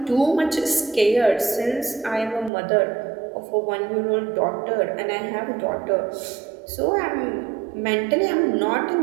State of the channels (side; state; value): left; drops out; at 2.5 s